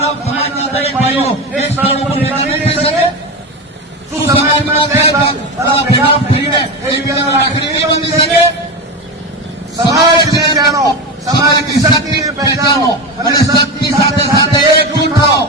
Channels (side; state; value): both; normal; correlation 0.19